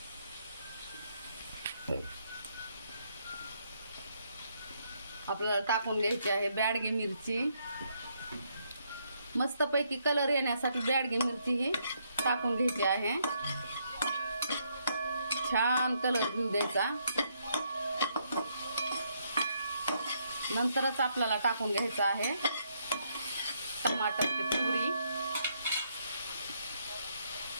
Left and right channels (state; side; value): inverted; both; correlation -0.74